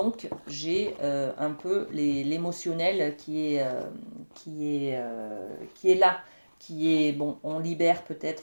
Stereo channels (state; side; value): inverted; both; correlation -1.00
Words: j'ai un peu l'émotionnel qui est là, qui est, bon, on libère